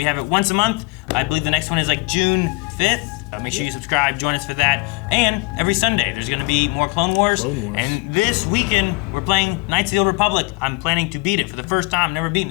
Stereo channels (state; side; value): quieter; right; 28.1 dB